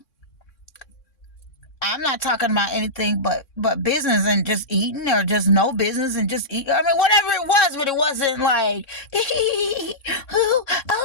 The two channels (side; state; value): right; late; 3.6 ms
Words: I'm not talking about anything but business and just eating, or just no business and just eat. Whatever it was, but it wasn't like,